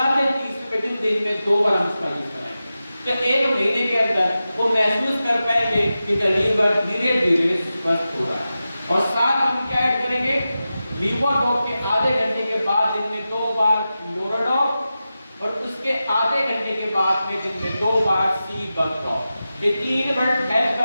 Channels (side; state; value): both; inverted; correlation -0.93